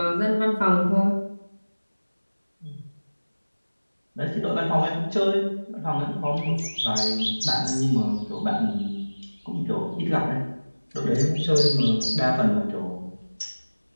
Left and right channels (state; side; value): inverted; both; correlation -1.00